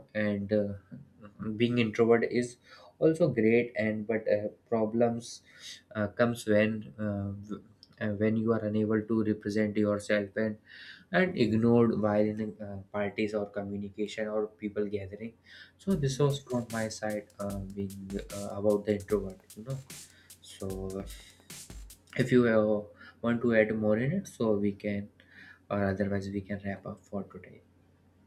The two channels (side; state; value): both; identical; correlation 1.00